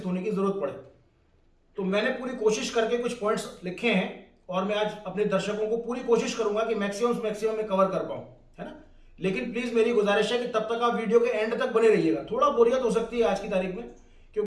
होने की जरूरत पड़े। तो मैंने पूरी कोशिश करके कुछ पॉइंट्स लिखे हैं और मैं आज अपने दर्शकों को पूरी कोशिश करूंगा कि मैक्सिमम में कवर कर पाऊं, है ना। लेकिन प्लीज मेरी गुजारिश है कि तब तक आप वीडियो के एंड तक बने रहिएगा। थोड़ा बोरियत हो सकती है आज की तारीख में,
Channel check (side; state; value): both; identical; correlation 1.00